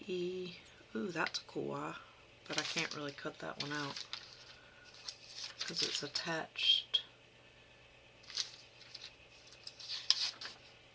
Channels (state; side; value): identical; both; correlation 1.00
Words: Ooh, that's a cool eye, but I can't really cut that one out because it's attached.